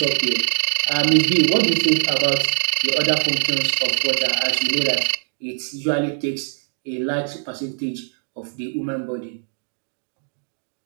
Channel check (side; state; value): left; silent; digital silence